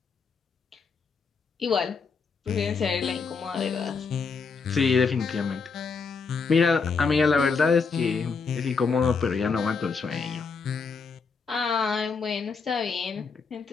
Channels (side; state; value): right; quieter; 5.1 dB